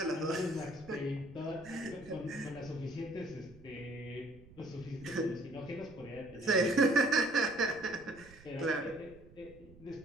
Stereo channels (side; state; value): right; noise; rumble, 21 dB below the sound